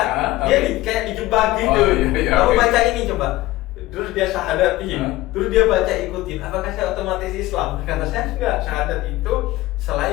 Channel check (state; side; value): quieter; right; 17.6 dB